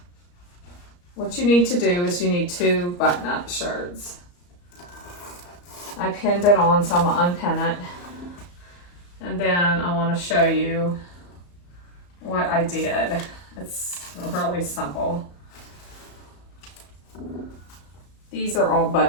what you need to do is you need two button-up shirts. I pinned it on, so I'm gonna unpin it. And then I want to show you what I did. It's really simple. These are all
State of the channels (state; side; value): late; right; 34 ms